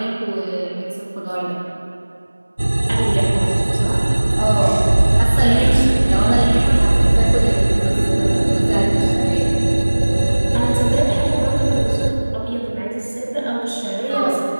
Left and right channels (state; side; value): inverted; both; correlation -1.00